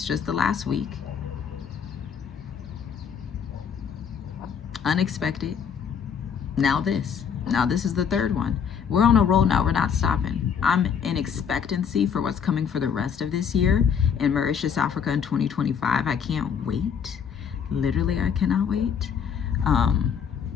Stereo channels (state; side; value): quieter; right; 7.3 dB